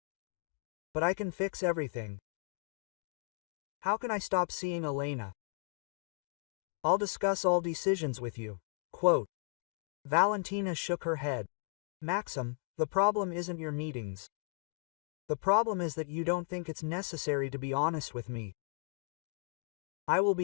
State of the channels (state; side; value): silent; right; 54 dB below the other